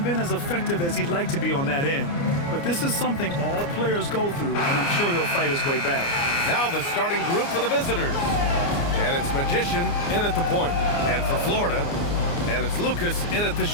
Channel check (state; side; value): late; right; 29 ms